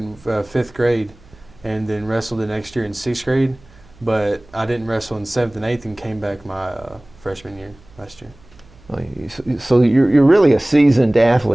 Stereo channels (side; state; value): right; noise; hum, 26 dB below the sound